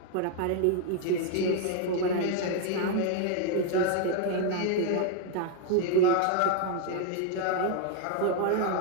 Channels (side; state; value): both; different; correlation 0.00